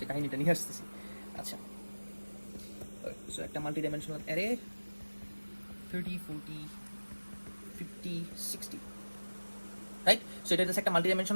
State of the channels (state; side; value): inverted; both; correlation -1.00